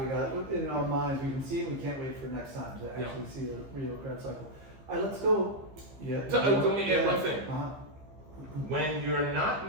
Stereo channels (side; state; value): left; late; 15 ms